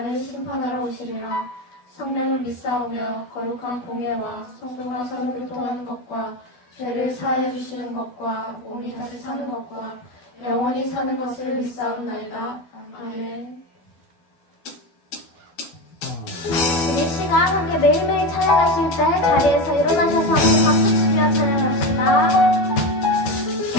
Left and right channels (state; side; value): late; right; 12 ms